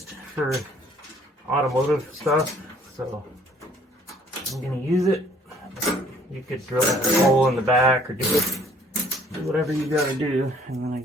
for automotive stuff. So I'm gonna use it. You could drill a hole in the back or do whatever you gotta do. And then I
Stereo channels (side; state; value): both; normal; correlation 0.58